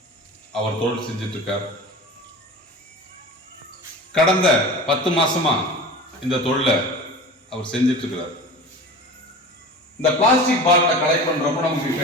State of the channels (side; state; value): both; normal; correlation 0.35